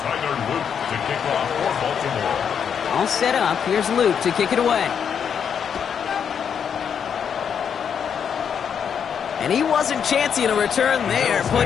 Luke to kick off for Baltimore. All set up. Here's Luke to kick it away. And he wasn't chancing a return there,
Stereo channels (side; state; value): right; quieter; 7.6 dB